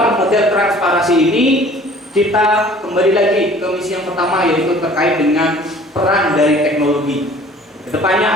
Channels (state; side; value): normal; both; correlation 0.50